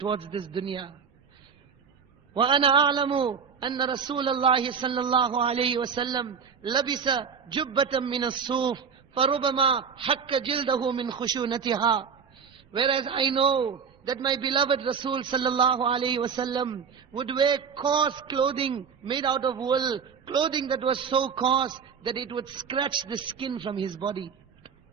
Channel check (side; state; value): left; quieter; 6.5 dB